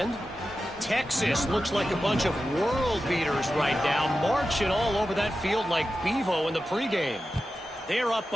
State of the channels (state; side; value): normal; both; correlation 0.92